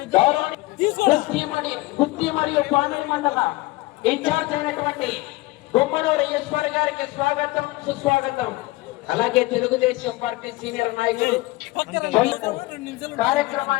గుత్తి మరియు పామిడి మండల ఇన్ఛార్జ్ అయినటువంటి గుమ్మనూరు ఈశ్వర్ గారికి స్వాగతం సుస్వాగతం. అలాగే తెలుగుదేశం పార్టీ సీనియర్ నాయకులు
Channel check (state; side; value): quieter; right; 20.7 dB